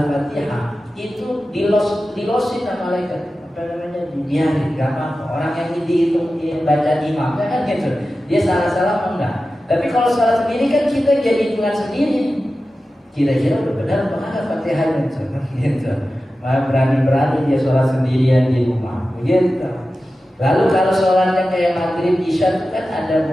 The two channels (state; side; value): normal; both; correlation 0.94